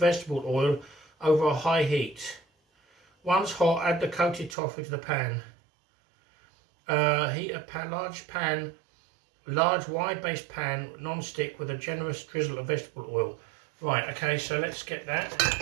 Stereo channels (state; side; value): drops out; left; at 4.5 s